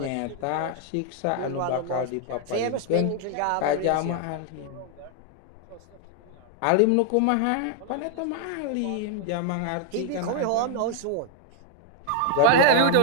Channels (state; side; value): different; both; correlation 0.00